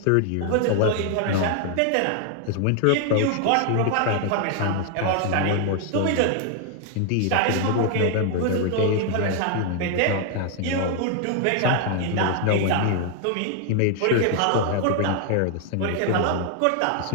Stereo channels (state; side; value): different; both; correlation 0.00